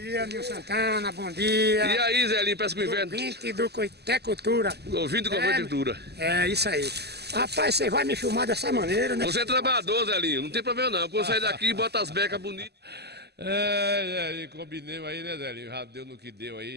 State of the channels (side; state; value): left; late; 0.48 ms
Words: Nil Santana, bom dia. E aí, Zelinho, parece que o inverno... Ouvinte do Coitecultura. Ouvinte do Coitecultura. É, isso aí. Rapaz, você vai me filmar dessa maneira, né? Você é trabalhador, Zelinho, não tem problema não. Quando sair daqui, bota as becas bonitas. Zelinho, combinemos aí, né, Zelinho? Já deu no que deu